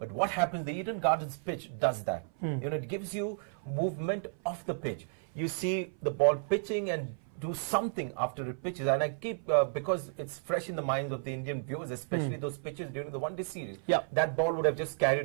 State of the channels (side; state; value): left; silent; 56 dB below the other